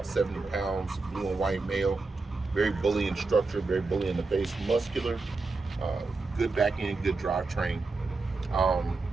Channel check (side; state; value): left; quieter; 3.7 dB